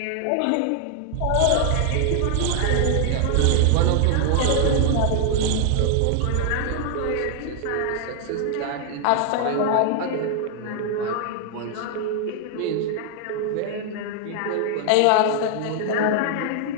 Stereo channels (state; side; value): different; both; correlation 0.00